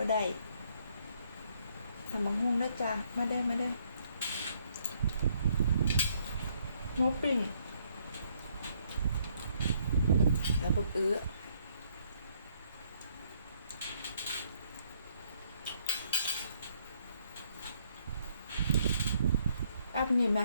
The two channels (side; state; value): both; inverted; correlation -0.69